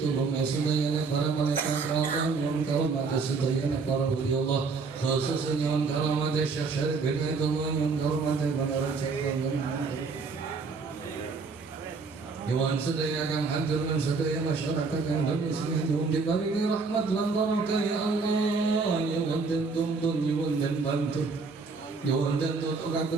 sedaya para malaikat Allah yang karumat sedaya para wali Allah khususnya yang karumat Syekh Syarif Hidayatullah yang karumat para raja Dewan sedaya kang hadir dan sedaya masyarakat Indonesia nyuwun diparingi rahmat lan barokah ya Allah. Nyuwun den tuntun nyuwun den bantu nyuwun den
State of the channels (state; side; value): quieter; left; 4.5 dB